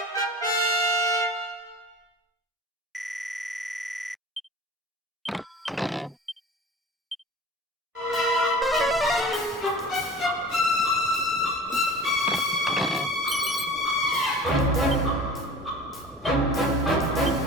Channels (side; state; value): both; normal; correlation 0.40